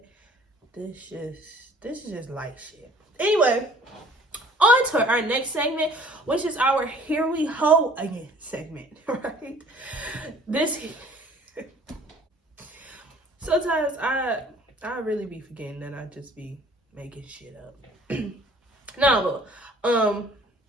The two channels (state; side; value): normal; both; correlation 0.53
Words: This is just light shit. Anyway, on to our next segment, which is our Here We Ho Again segment, right? Sometimes I really be forgetting that I just be making shit up. No,